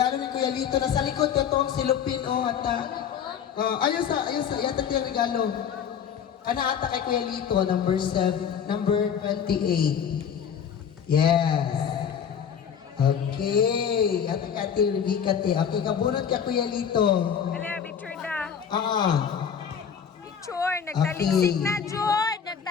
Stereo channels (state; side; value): quieter; right; 7.8 dB